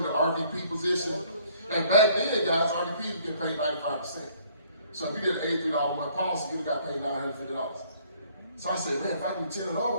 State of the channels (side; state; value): both; inverted; correlation -0.61